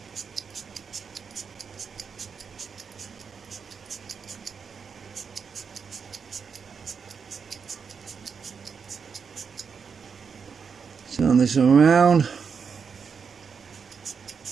Turn this around.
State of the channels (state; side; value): quieter; left; 6.1 dB